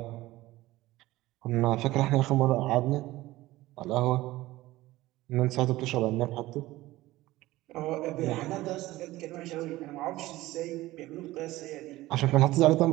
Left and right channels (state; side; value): quieter; left; 17.6 dB